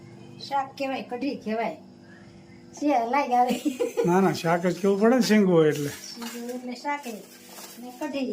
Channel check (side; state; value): both; identical; correlation 1.00